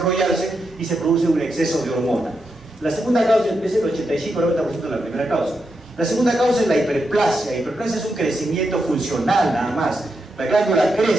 y se produce un exceso de hormona. La segunda causa es el 85-90% de la primera causa. La segunda causa es la hiperplasia. La hiperplasia es un crecimiento funcional nada más. La glándula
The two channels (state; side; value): normal; both; correlation 0.85